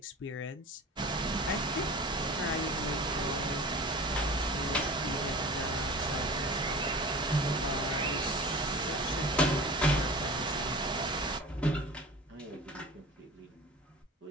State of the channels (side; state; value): both; normal; correlation 0.37